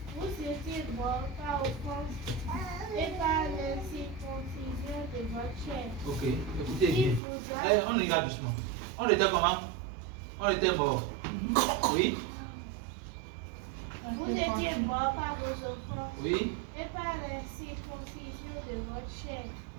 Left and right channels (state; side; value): drops out; left; at 7.2 s